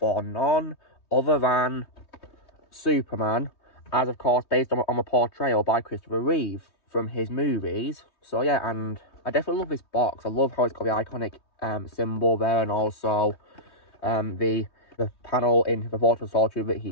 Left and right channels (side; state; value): right; late; 3.2 ms